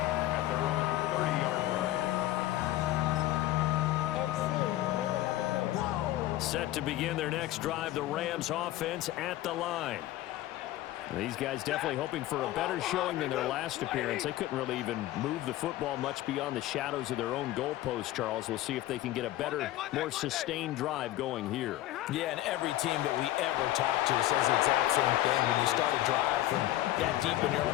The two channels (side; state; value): right; quieter; 15.2 dB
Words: At their own 30-yard Set to begin their next drive, the Rams offense at the line. These guys definitely hoping for a better showing than their last appearance. They couldn't really even move the football much beyond the shadows of their own goalpost, Charles. We'll see if they can get a better, more sustained drive going here. Yeah, and every team that we ever talk to says the exact same thing. When you start a drive from that deep in your